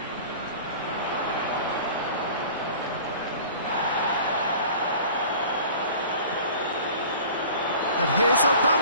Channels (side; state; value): both; inverted; correlation -0.43